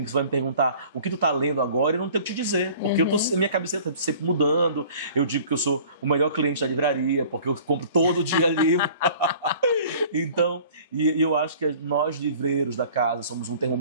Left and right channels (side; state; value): both; inverted; correlation -0.49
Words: que você vai me perguntar o que tu tá lendo agora e eu não tenho o que te dizer. Porque minha cabeça está sempre mudando. Eu digo que eu sou o melhor cliente da livraria, porque eu compro todo dia livro. Então, e eu acho que nós livreiros da casa somos um